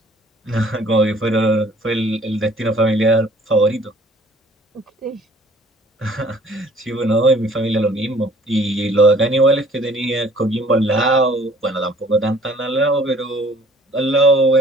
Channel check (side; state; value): both; normal; correlation 0.55